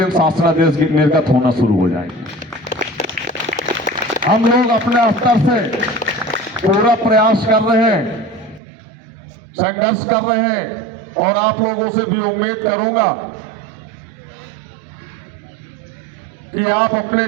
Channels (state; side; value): drops out; left; at 8.6 s